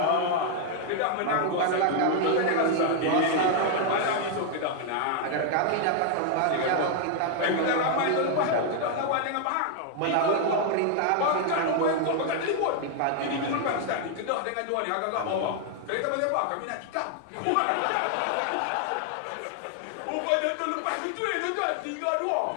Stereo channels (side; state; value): both; different; correlation 0.00